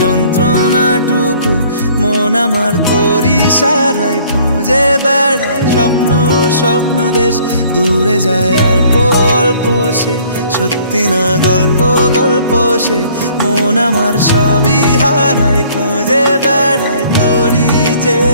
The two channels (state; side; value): inverted; both; correlation -0.57